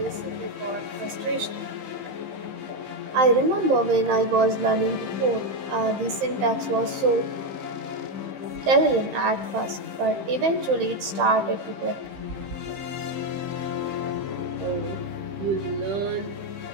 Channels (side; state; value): left; late; 15 ms